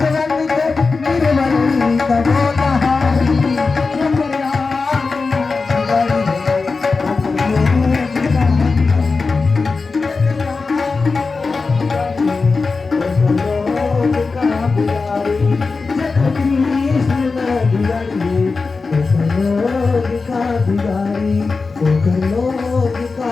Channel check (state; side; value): quieter; right; 4.3 dB